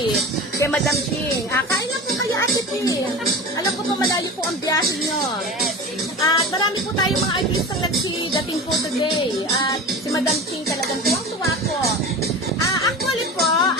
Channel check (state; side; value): normal; both; correlation 0.32